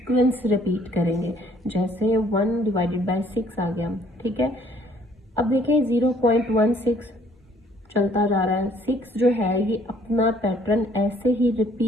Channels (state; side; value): normal; both; correlation 0.61